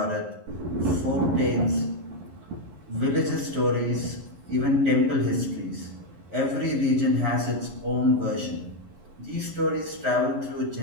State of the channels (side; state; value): left; late; 11 ms